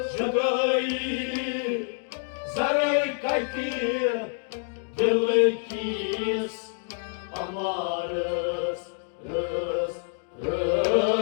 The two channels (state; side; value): silent; right; 60 dB below the other